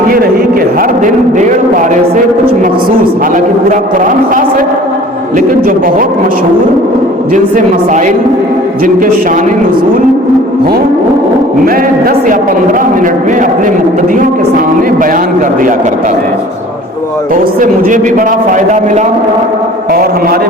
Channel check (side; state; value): both; normal; correlation 0.47